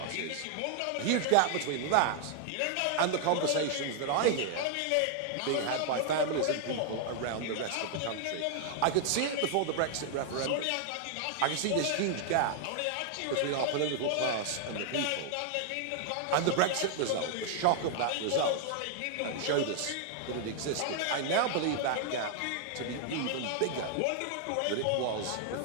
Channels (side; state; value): both; different; correlation 0.00